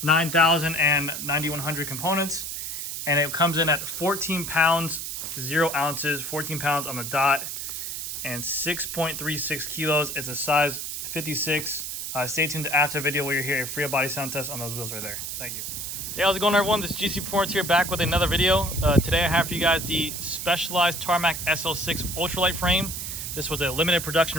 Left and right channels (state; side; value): noise; right; hiss, 5 dB below the sound